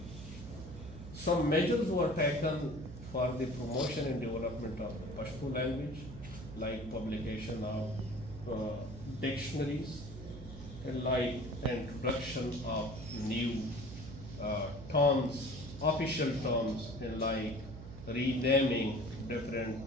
some measures were taken for the promotion and development of the Pashto language, like publication of dictionaries, and like introduction of new terms, official terms, and like renaming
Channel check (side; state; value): right; noise; hum, 12 dB below the sound